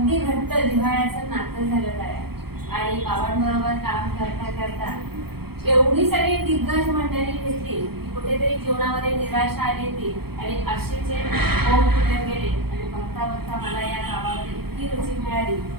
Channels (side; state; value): left; late; 0.96 ms